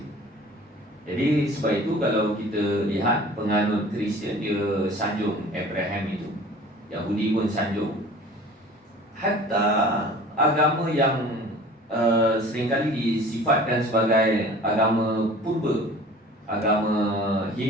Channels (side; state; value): both; normal; correlation 0.45